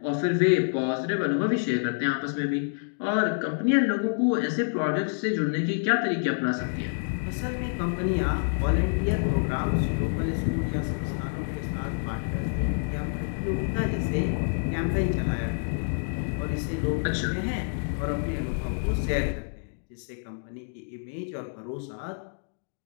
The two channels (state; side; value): silent; right; digital silence